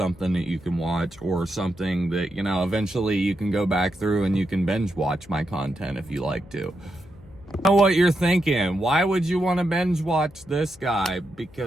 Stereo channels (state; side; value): noise; left; hum, 24 dB below the sound